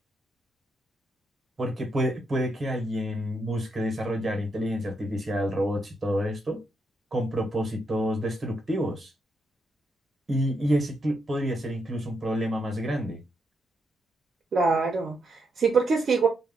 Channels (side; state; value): both; normal; correlation 0.80